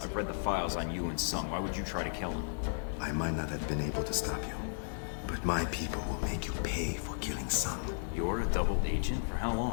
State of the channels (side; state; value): right; silent; 55 dB below the other